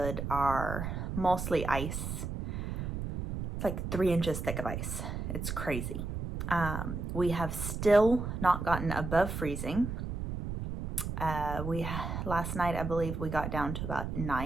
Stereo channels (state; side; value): noise; right; rumble, 4 dB below the sound